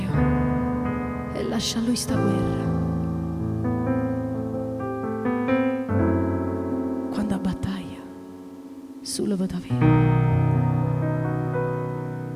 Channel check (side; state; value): both; identical; correlation 1.00